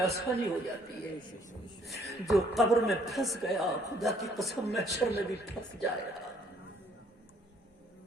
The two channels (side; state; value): both; normal; correlation 0.63